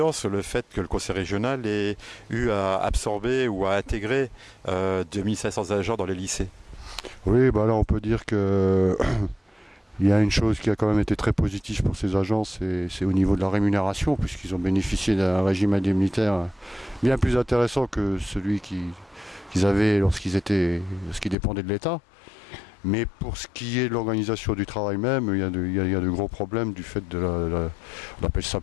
sur le fait que le conseil régional ait eu à absorber ou à intégrer 2500 agents dans les lycées? Oui, là on peut dire que il y a une chose qui a quand même été très positive pour ces agents, c'est au niveau de la rémunération, puisqu'ils ont bénéficié d'un régime indemnitaire bien plus intéressant que celui qu'ils avaient lorsqu'ils dépendaient de l'État. Mais pour ce qui est de l'organisation du travail même, il y a de gros problèmes du fait on appelle ça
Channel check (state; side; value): drops out; right; at 21.4 s